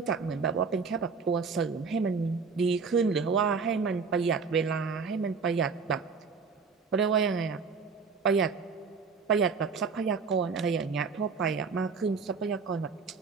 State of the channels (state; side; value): quieter; left; 5.2 dB